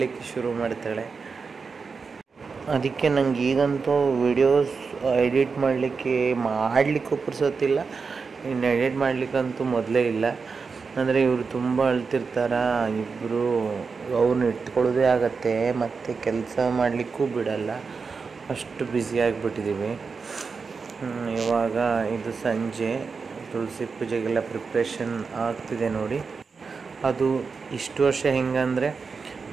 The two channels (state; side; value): quieter; left; 5.0 dB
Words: ಶುರು ಮಾಡ್ತಾಳೆ. ಅದಕ್ಕೆ ನಂಗೆ ಈಗಂತೂ ವಿಡಿಯೋಸ್ ಎಡಿಟ್ ಮಾಡಲಿಕ್ಕೂ ಪುರ್ಸೊತ್ತಿಲ್ಲ. ಇನ್ನು ಎಡಿಟ್ ಮಾಡಲಿಕ್ಕಂತೂ ಮೊದಲೇ ಇಲ್ಲ. ಅಂದರೆ ಇವರು ತುಂಬ ಅಳ್ತಿರ್ತಾರ ಇಬ್ಬರು. ಅವ್ರನ್ನ ಇಟ್ಕೊಳ್ಳೋದೇ ಆಗತ್ತೆ, ಮತ್ತು ಕೆಲಸ ಮಾಡಲಿಕ್ಕೂ ಬಿಡಲ್ಲ, ಅಷ್ಟು ಬ್ಯುಸಿಯಾಗಿಬಿಟ್ಟಿದ್ದೀವಿ. ಇವಾಗ ಇದು ಸಂಜೆ ತುಳಸಿ ಪೂಜೆಗೆಲ್ಲ ಪ್ರಿಪ್ರೇಷನ್ ಆಗ್ತಿದೆ ನೋಡಿ. ಅದು ಇಷ್ಟು ವರ್ಷ ಹೆಂಗಂದರೆ